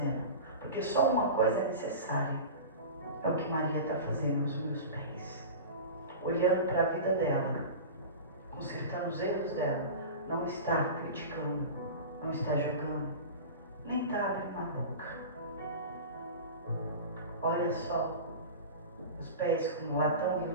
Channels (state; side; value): inverted; both; correlation -0.31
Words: porque só uma coisa é necessária, é o que Maria está fazendo aos meus pés, olhando para a vida dela, consertando os erros dela, não está criticando, não está julgando, nem está abrindo a boca. Olha só, os pés como latão